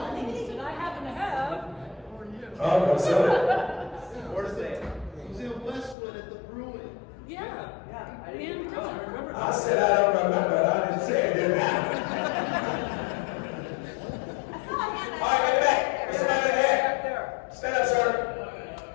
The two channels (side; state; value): right; drops out; at 6.0 s